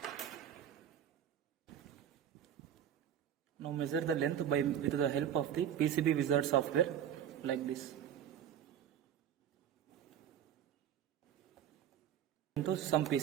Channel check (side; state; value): left; quieter; 9.8 dB